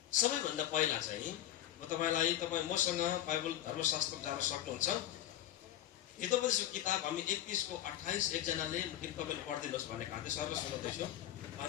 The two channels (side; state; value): right; quieter; 12.6 dB